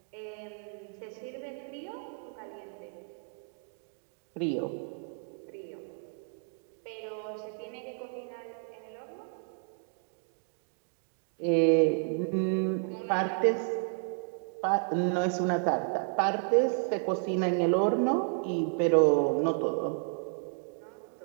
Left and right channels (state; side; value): silent; left; 56 dB below the other